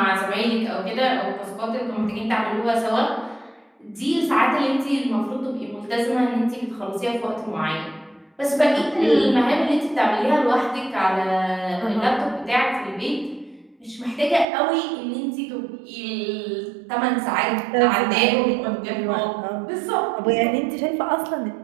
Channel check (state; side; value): drops out; left; at 14.5 s